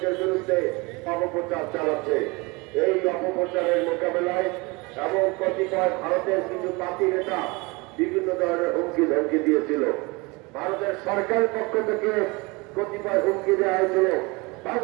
বিরুদ্ধে অপপ্রচার চালাচ্ছে। এই অপপ্রচারের মোকাবেলায় এবং কতিপয় ভারতের কিছু পাতি নেতা বিভিন্ন ধরনের হুমকি ধমকি দিয়েছিল। ভারতের সরকারের পক্ষ থেকে কতিপয় হুমকি দেওয়া হয়েছিল,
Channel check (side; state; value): left; quieter; 25.9 dB